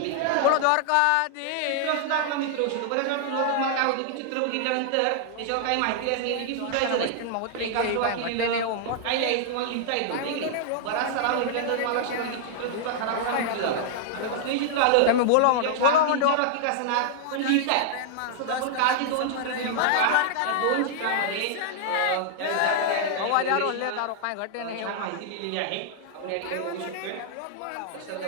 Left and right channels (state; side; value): different; both; correlation -0.01